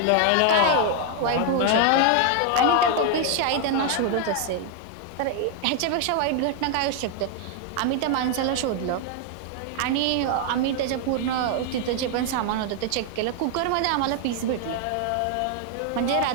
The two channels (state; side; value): different; both; correlation 0.00